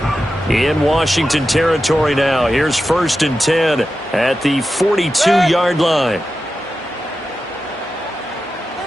In Washington territory now. Here's 1st and 10 at the 42-yard line.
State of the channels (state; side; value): normal; both; correlation 0.91